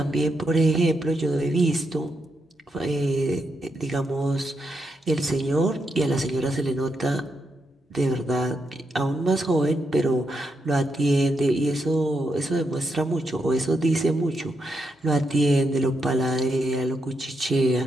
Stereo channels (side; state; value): both; normal; correlation 0.82